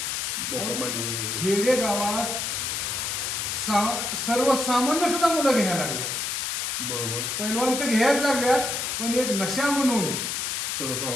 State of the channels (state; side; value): noise; left; hiss, 2 dB below the sound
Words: खेडे गावात सर्वसामान्य सुद्धा मुलं घ्यायला लागल्या. बरोबर. पैलवान तर घ्यायला लागल्यात, पण एक नशा म्हणून